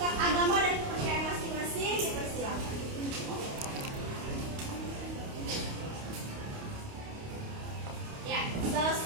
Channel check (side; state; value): left; late; 28 ms